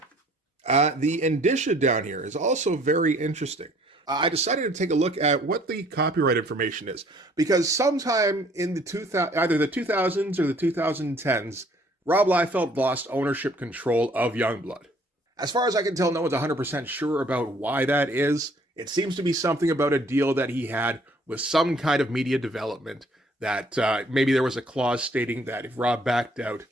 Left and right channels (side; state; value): both; normal; correlation 0.59